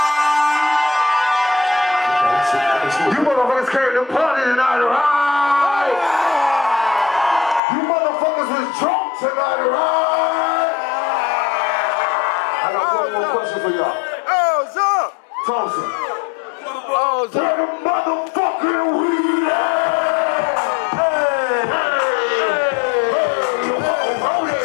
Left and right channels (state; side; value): drops out; right; at 7.6 s